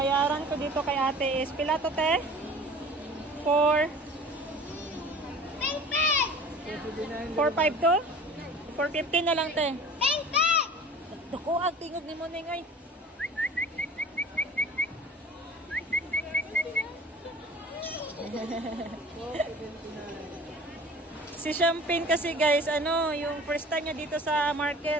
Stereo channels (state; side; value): normal; both; correlation 0.42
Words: ko dito kay ate is, pila to, te? 4.5 to? 4.50 na lang, te. Dako, ang tingog ni mo, Nengay. Si Champagne kasi guys, yung first time niya dito sa